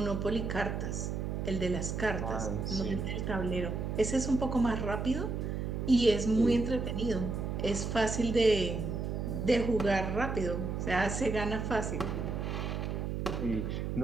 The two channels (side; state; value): right; noise; hum, 2 dB below the sound